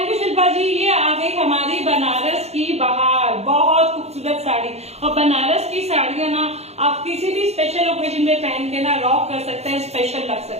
यू शिल्पा जी। ये आ गई हमारी बनारस की बहार, बहुत खूबसूरत साड़ी। और बनारस की साड़ियां ना आप किसी भी स्पेशल ओकेजन में पहन के ना रॉक कर सकते हैं, स्पेशल लग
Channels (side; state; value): left; late; 0.31 ms